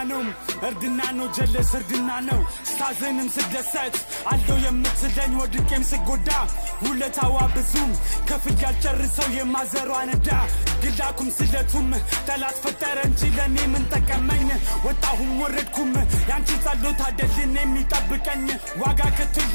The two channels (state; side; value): inverted; both; correlation -1.00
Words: ነው ጀለስ እርድና ነው ስታዘንም ስደሰት አለው የምትለኝ ወድቄም ስጎዳ ውለታዋ ብዙም ከፍል ያልጨርሰው የማዘሯ ነዳ ግላኩም ስለቱም ጠላት ፈጠረ እንጂ ለኔ ምን ጠቀመኝ ወጣሁም ወረድኩም ያንቺ ጸሎት አይደልን የሚጠብቀኝ ዋጋ